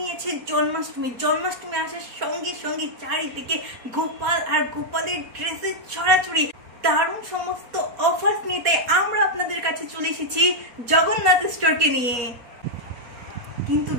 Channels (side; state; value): left; late; 4.2 ms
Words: আছে জন্মাষ্টমী। জন্মাষ্টমী আসার সঙ্গে সঙ্গে চারিদিকে গোপাল আর গোপালের ড্রেসের ছড়াছড়ি, দারুণ সমস্ত অফার্স নিয়ে। তাই আমরা আপনাদের কাছে চলে এসেছি জগন্নাথ স্টোরকে নিয়ে। কিন্তু